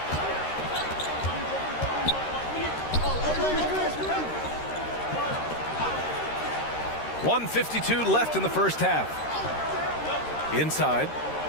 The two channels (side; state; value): right; late; 13 ms